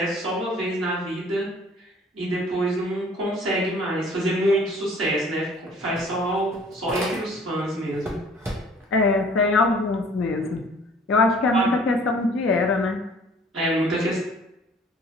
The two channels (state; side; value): normal; both; correlation 0.53